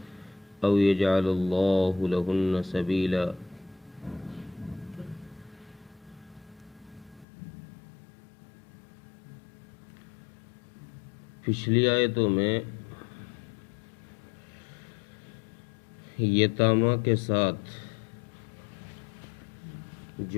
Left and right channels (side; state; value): right; drops out; at 7.2 s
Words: أو يجعل الله لهن سبيلا. پچھلی آیتوں میں یتامہ کے ساتھ